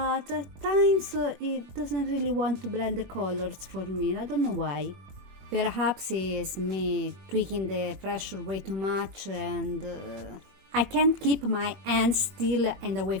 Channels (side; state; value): left; late; 21 ms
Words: at times it doesn't really want to blend the colors for me. I don't know why. Perhaps it's me tweaking the pressure way too much and I can't keep my hands still and away